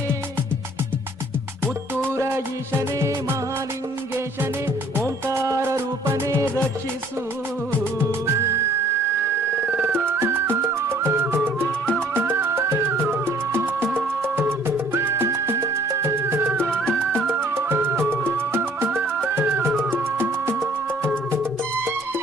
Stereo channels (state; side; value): normal; both; correlation 0.57